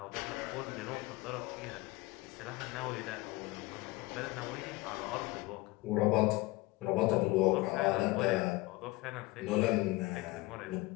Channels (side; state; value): right; quieter; 21.4 dB